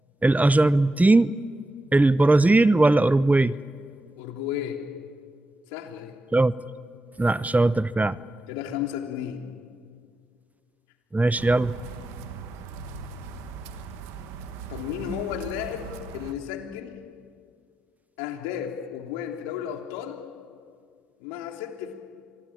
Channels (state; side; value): normal; both; correlation 0.88